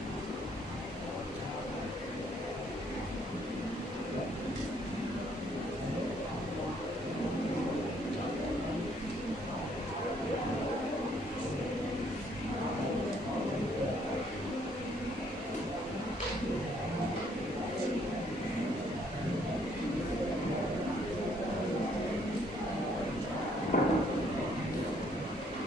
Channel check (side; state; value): both; normal; correlation 0.66